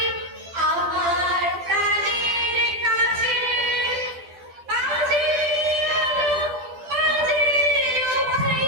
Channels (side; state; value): left; late; 12 ms